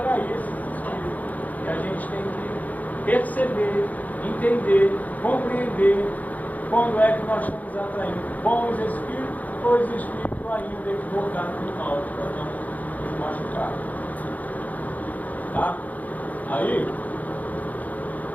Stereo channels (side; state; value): right; late; 0.078 ms